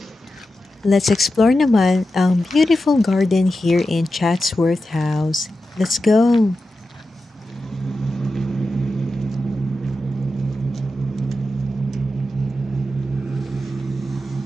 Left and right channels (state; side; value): normal; both; correlation 0.91